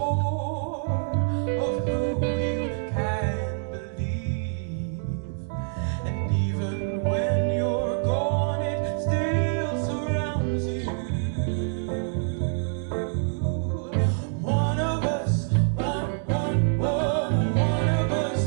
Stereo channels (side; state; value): left; silent; 61 dB below the other